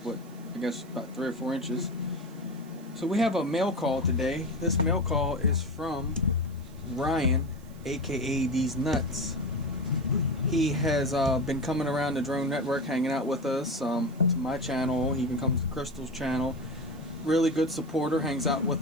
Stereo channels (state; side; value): noise; right; hiss, 27 dB below the sound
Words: but I guess about 3 or 4 inches. So we have a mail call today. This mail call is from Ryan, aka deeznuts. He has been coming around the drone network, hanging out with us, to my channel. He even comes to Crystal's channel. Really good supporter, hangs out